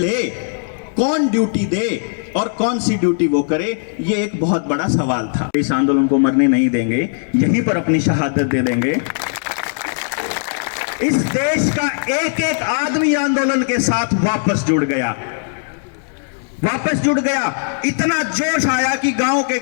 कौन ड्यूटी दे और कौन सी ड्यूटी वो करे, ये एक बहुत बड़ा सवाल था। इस आंदोलन को मरने नहीं देंगे, यहीं पर अपनी शहादत दे देंगे। इस देश का एक एक आदमी आंदोलन के साथ वापस जुड़ गया। इतना जोश आया कि गांव के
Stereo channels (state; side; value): silent; right; digital silence